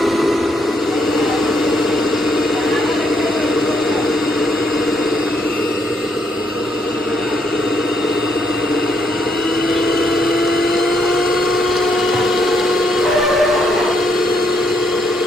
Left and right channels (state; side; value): normal; both; correlation 0.74